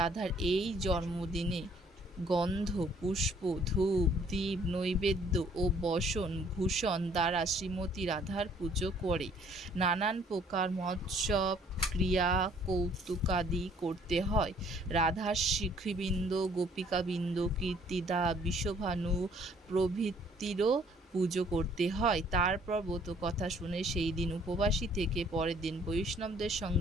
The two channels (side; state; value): both; normal; correlation 0.60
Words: এই জন্মদিনে গন্ধ, পুষ্প, ধূপ, দীপ, নৈবেদ্য ও বসন ভূষণ দ্বারা শ্রীমতী রাধার পুজো করে নানান প্রকার মৎসব ক্রিয়া কৌতুকাদি করতে হয়। রাধার সখীবৃন্দ, গোপিকাবৃন্দ, কীর্তিদা, বিষভানু প্রভৃতিরও পুজো করতে হয়। তারপর ব্রত কথা শুনে সেই দিন উপবাসী থেকে পরের দিন বৈষ্ণবদের